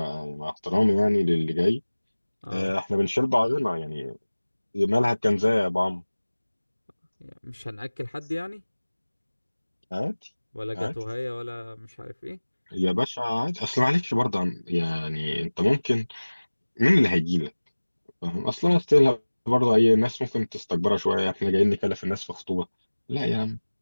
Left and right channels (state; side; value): inverted; both; correlation -1.00